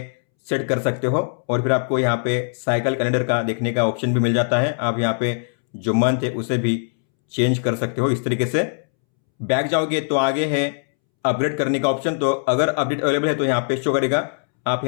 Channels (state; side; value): silent; right; 65 dB below the other